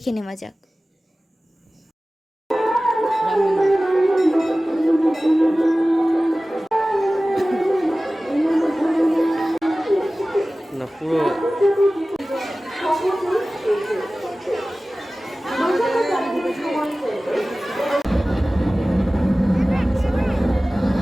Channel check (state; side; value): normal; both; correlation 0.97